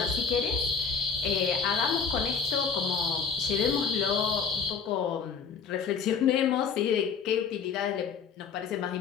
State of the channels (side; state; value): right; quieter; 6.1 dB